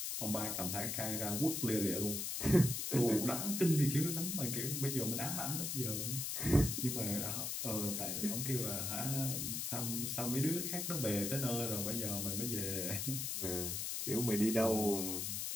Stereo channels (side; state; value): left; noise; hiss, 2 dB below the sound